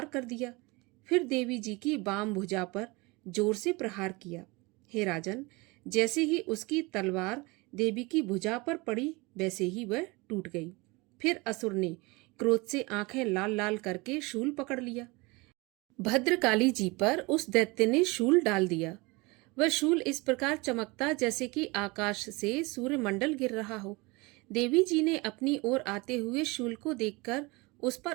कर दिया। फिर देवी जी की बाम भुजा पर जोर से प्रहार किया। हे राजन, जैसे ही उसकी तलवार देवी की भुजा पर पड़ी, वैसे ही वह टूट गई। फिर असुर ने क्रोध से आंखें लाल लाल करके शूल पकड़ लिया। भद्रकाली जी पर उस दैत्य ने शूल डाल दिया। वह शूल इस प्रकार चमकता जैसे कि आकाश से सूर्यमंडल गिर रहा हो। देवी जी ने अपनी ओर आते हुए शूल को देखकर उस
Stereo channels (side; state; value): left; quieter; 25.1 dB